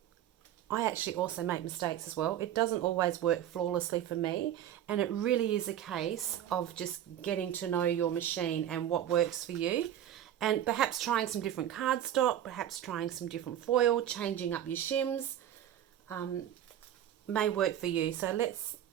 I actually also make mistakes as well. It doesn't always work flawlessly for me, and it really is a case of just getting to know your machine and what works for you, and perhaps trying some different cardstock, perhaps trying some different foil, changing up your shims may work for you. So let's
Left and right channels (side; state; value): left; quieter; 11.1 dB